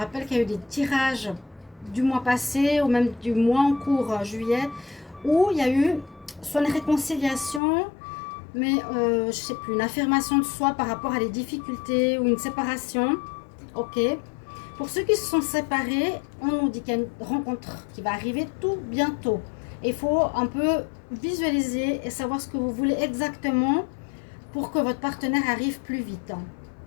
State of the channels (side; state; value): right; drops out; at 7.6 s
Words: qu'il y a eu des tirages du mois passé ou même du mois en cours, juillet, où il y a eu soit une réconciliation, mais je sais plus, une affirmation de soi par rapport à des difficultés ou une séparation. Ok. Pour ceux qui se sont séparés, on nous dit qu'il y a une rencontre qui va arriver tout bientôt. Il faut un peu visualiser et savoir ce que vous voulez exactement pour que votre partenaire arrive plus vite.